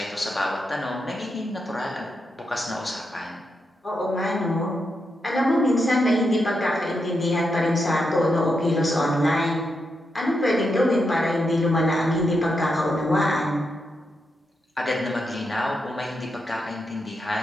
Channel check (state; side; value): normal; both; correlation 0.84